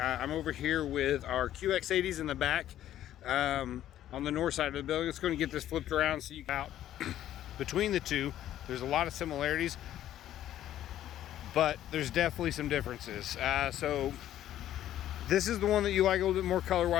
over here with our QX80s in the back on the north side of the building. It's going to get this flipped around so you out between the two. There's a lot of similarities, but there's definitely some differences. So this is the one that you like a little bit more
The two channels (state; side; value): quieter; right; 12.2 dB